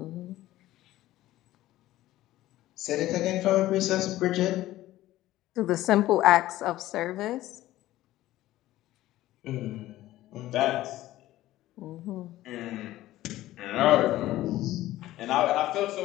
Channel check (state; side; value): quieter; right; 15.4 dB